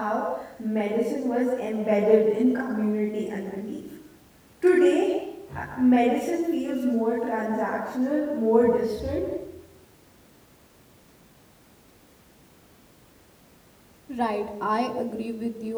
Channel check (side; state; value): both; identical; correlation 1.00